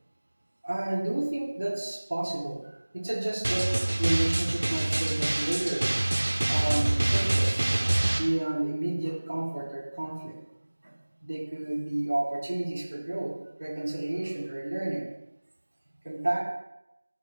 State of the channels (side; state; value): both; inverted; correlation -1.00